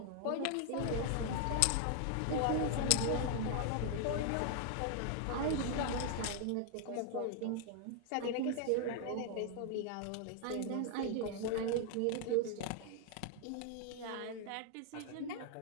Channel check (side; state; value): both; different; correlation 0.00